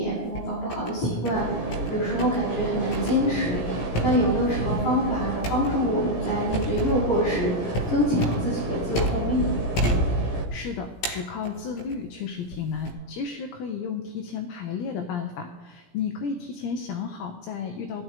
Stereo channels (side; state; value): right; late; 17 ms